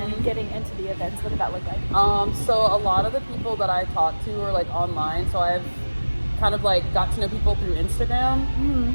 getting into the events? What did that look like? So a lot of the people that I talk to are like online, so I've kind of like got to know people through Instagram,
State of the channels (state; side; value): inverted; both; correlation -1.00